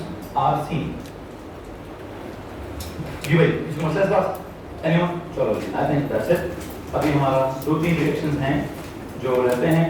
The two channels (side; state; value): both; identical; correlation 1.00